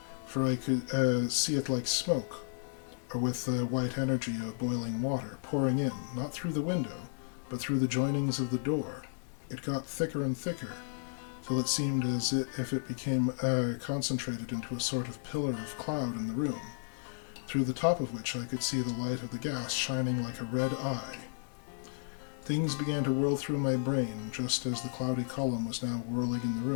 for I could see it like smoke, or with the white energy of boiling water pouring in, not through the window, but through the joinings of the door. It got thicker and thicker, till it seemed as if it became concentrated into a sort of pillar of cloud in the room, through the top of which I could see the light of the gas shining like a red eye. Things began to whirl through my brain, just as the cloudy column was now whirling in the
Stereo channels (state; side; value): silent; right; digital silence